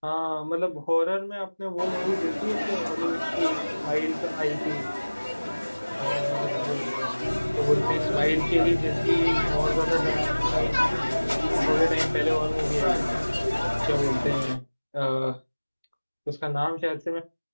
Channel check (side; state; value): both; inverted; correlation -1.00